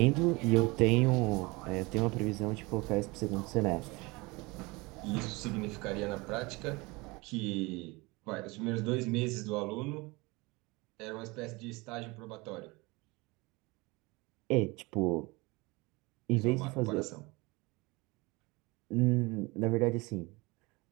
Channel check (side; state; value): left; quieter; 24.6 dB